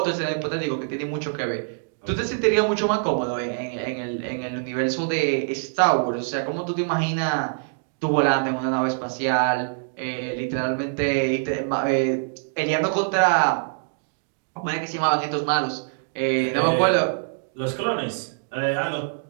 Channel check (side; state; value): left; silent; digital silence